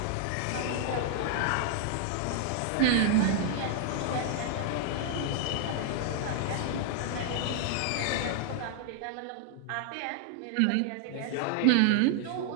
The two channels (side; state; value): both; different; correlation 0.00